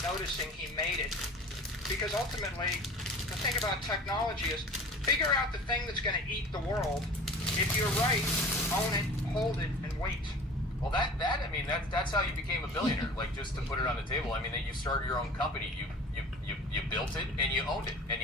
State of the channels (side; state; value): both; normal; correlation 0.41